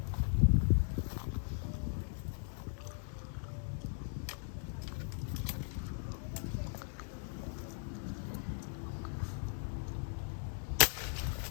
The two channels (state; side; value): silent; right; 52 dB below the other